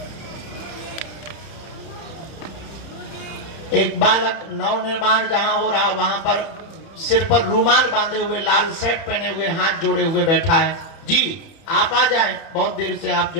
एक बालक नवनिर्माण जहां हो रहा, वहां पर सिर पर रूमाल बांधे हुए, लाल शर्ट पहने हुए, हाथ जोड़े हुए बैठा है। जी आप आ जाएं। बहुत देर से आप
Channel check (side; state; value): right; late; 31 ms